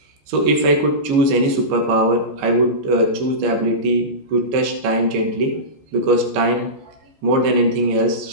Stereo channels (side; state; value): left; late; 15 ms